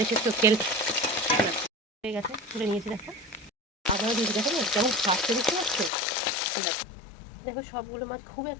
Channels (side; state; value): right; drops out; at 5.9 s